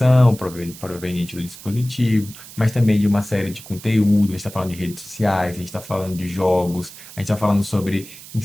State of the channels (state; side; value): noise; right; hiss, 17 dB below the sound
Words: proveniente do dispositivo, mas também de uma série de conteúdos, a gente está falando de redes sociais, a gente está falando de jogos, a gente está falando sobre